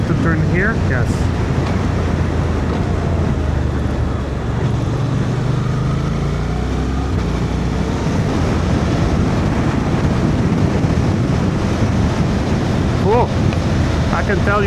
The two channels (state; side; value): identical; both; correlation 1.00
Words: to turn here, yes. Cool, I can tell